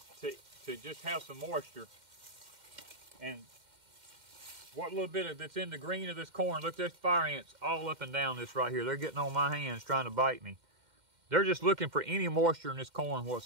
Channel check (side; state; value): left; late; 2.1 ms